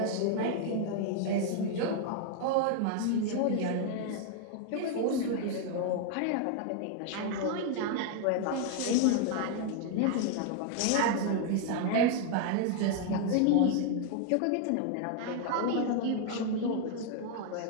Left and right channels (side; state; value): both; different; correlation 0.00